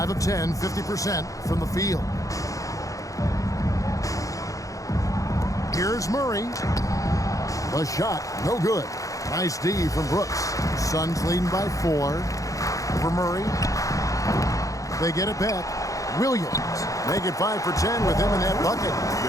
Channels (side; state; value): right; late; 0.16 ms